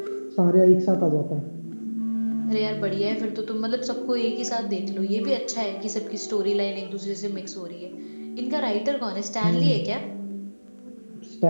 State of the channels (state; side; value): inverted; both; correlation -1.00